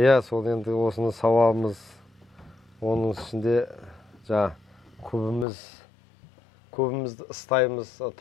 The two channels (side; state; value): right; drops out; at 5.5 s